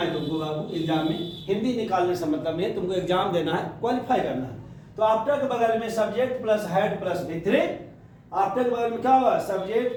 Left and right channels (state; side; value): identical; both; correlation 1.00